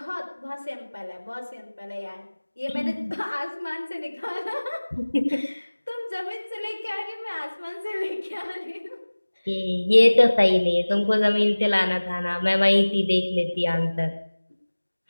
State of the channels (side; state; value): both; inverted; correlation -1.00